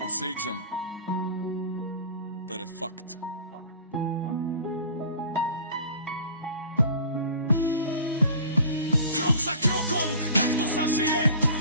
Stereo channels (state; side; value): inverted; both; correlation -0.42